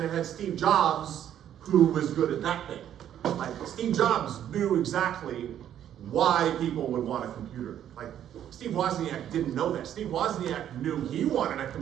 it had Steve Jobs, who was good at that thing. Like, Steve Jobs knew exactly why people would want a computer. Like, Steve Wozniak didn't know that. Steve Wozniak knew he wanted a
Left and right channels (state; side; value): quieter; left; 10.5 dB